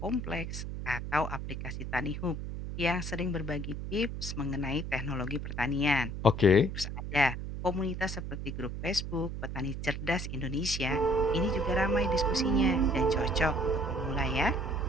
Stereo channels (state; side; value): noise; right; hum, 6 dB below the sound